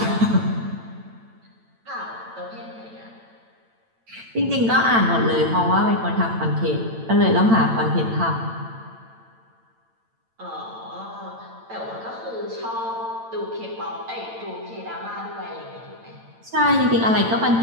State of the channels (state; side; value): late; left; 8.9 ms